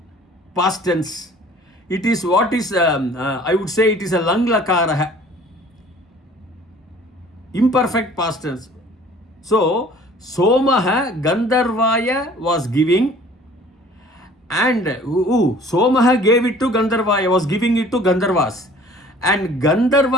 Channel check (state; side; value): normal; both; correlation 0.50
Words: Past tense. It is what is, I would say it is a Langlakaraha. Imperfect past tense. So, Somaha Gandharvaya was giving, and Somaha gave it to Gandharvaya, was giving it to Gandharvas. And